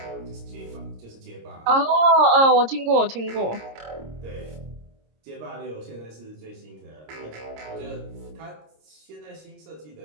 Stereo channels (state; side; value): late; left; 26 ms